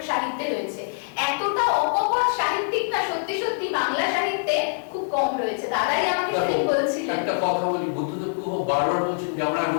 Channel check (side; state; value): right; silent; 62 dB below the other